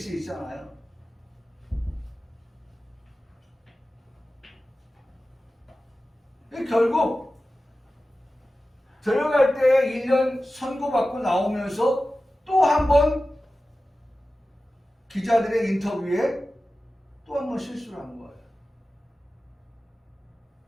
있잖아요. 결국 들어갈 때 1년 선고받고 나오면서 또 한 번 기자들의 인터뷰에 또 한 번 실수를 한 거예요.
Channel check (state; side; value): normal; both; correlation 0.95